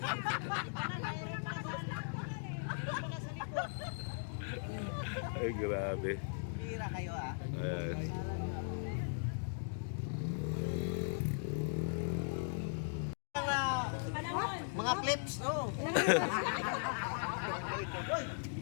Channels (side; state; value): right; silent; digital silence